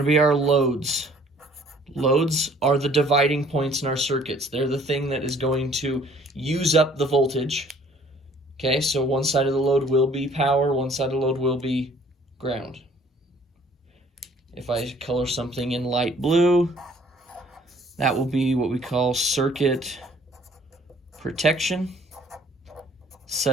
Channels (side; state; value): both; normal; correlation 0.56